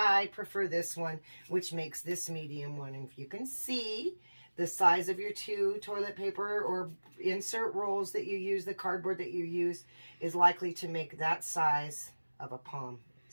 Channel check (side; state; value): both; inverted; correlation -1.00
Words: prefer this one, which makes this medium one. And if you can see, the size of your two toilet paper or insert rolls that you use, the cardboard that you use, is likely to make that size of a palm,